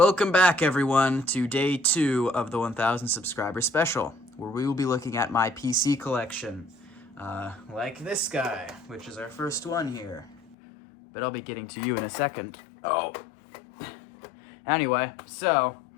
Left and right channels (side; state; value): right; drops out; at 10.6 s